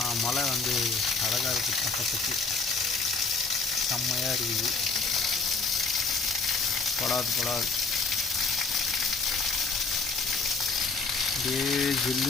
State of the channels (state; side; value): quieter; right; 4.3 dB